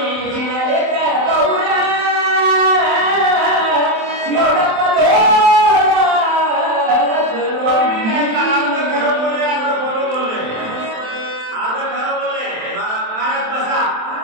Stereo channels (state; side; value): late; left; 27 ms